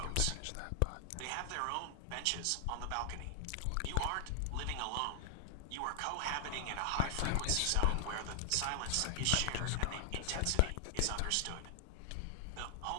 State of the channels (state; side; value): different; both; correlation 0.00